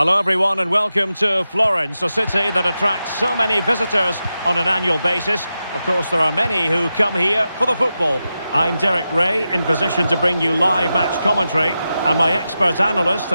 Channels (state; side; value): inverted; both; correlation -0.90